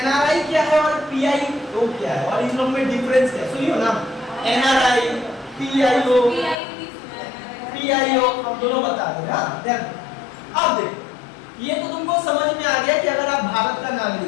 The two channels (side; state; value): right; drops out; at 6.6 s